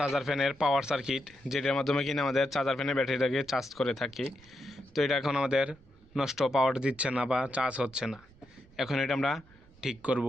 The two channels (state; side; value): noise; right; rumble, 26 dB below the sound